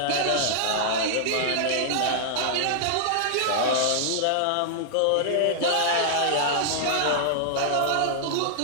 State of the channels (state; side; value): different; both; correlation -0.01